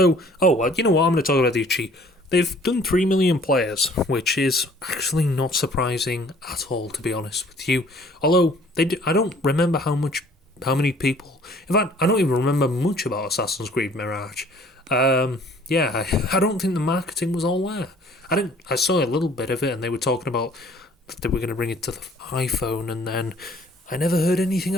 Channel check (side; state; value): both; normal; correlation 0.55